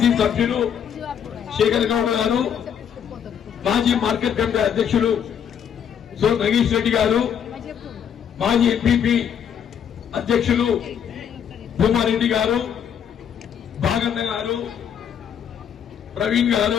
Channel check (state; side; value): quieter; right; 8.3 dB